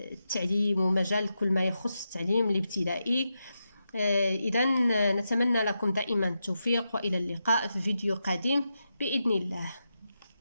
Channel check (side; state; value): both; inverted; correlation -0.88